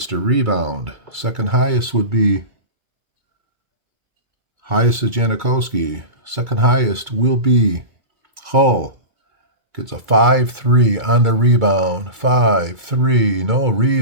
to rebound. Second highest would be. Highest is Janikowski. Second highest will be Hull. Gets a 5-3 on the rebound. 5-3. No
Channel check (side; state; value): left; late; 2.3 ms